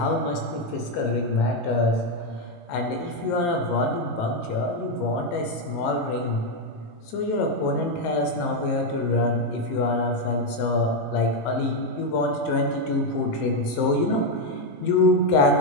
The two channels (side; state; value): right; late; 19 ms